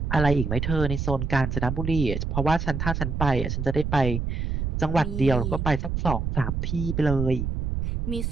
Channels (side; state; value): right; noise; rumble, 2 dB below the sound